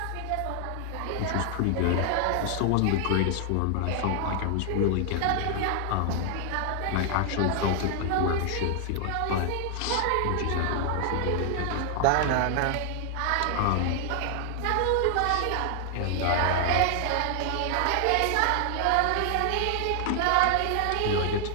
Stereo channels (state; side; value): different; both; correlation 0.00